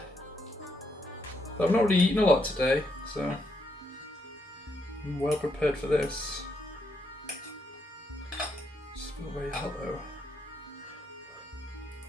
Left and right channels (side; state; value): both; normal; correlation 0.77